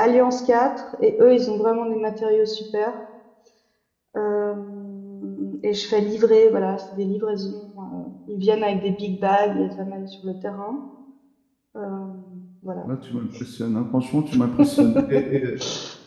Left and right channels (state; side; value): identical; both; correlation 1.00